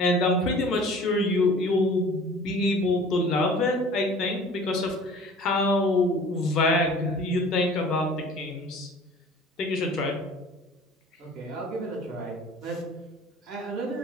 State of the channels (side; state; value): both; normal; correlation 0.46